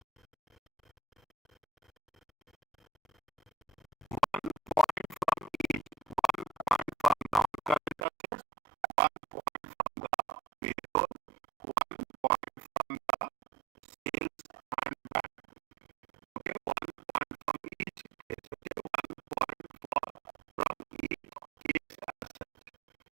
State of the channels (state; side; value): drops out; left; at 8.0 s